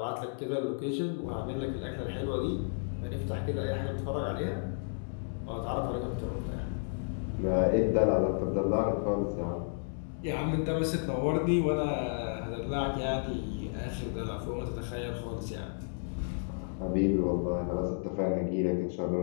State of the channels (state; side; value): silent; right; digital silence